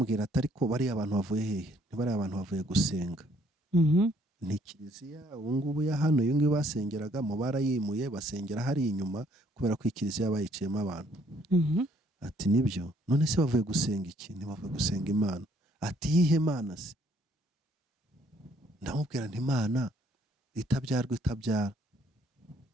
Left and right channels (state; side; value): normal; both; correlation 0.65